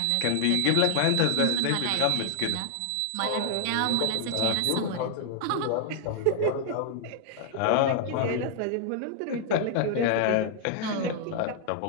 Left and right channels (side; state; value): both; different; correlation 0.00